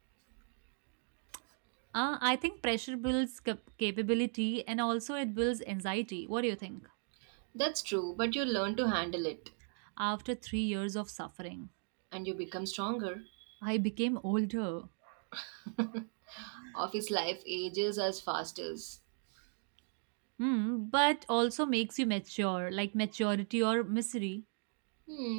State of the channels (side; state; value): left; silent; 53 dB below the other